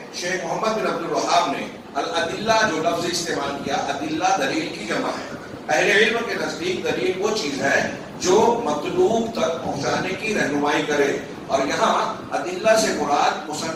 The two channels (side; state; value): both; identical; correlation 1.00